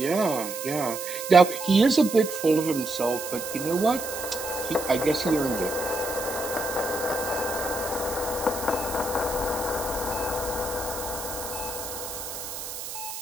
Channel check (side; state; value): right; noise; hiss, 8 dB below the sound